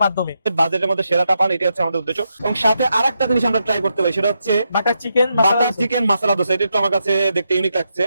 মাধ্যমে, বাজেটের মধ্যে সেরাটা পান, এটা হচ্ছে আমাদের উদ্দেশ্য। এবং সাথে আরেকটা জিনিস আমরা ট্রাই করতে পারি, সেটা হচ্ছে বাটার চিকেন মশলা দোসা। এটা একটু আমার কাছে দেখতে ইউনিক লাগছে,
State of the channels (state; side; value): inverted; both; correlation -0.84